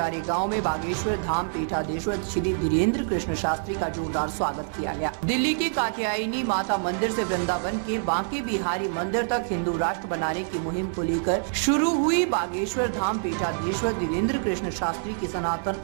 गांव में बागेश्वर धाम पीठाधीश्वर श्री धीरेन्द्र कृष्ण शास्त्री का जोरदार स्वागत किया गया। दिल्ली के कात्यायनी माता मंदिर से वृंदावन के बांके बिहारी मंदिर तक हिंदू राष्ट्र बनाने की मुहिम को लेकर शुरू हुई बागेश्वर धाम पीठाधीश्वर धीरेन्द्र कृष्ण शास्त्री की सनातन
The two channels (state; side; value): silent; left; digital silence